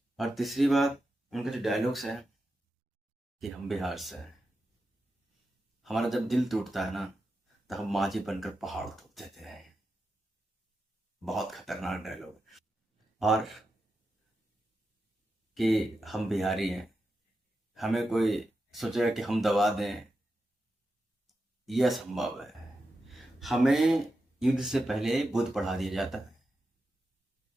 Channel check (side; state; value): both; normal; correlation 0.89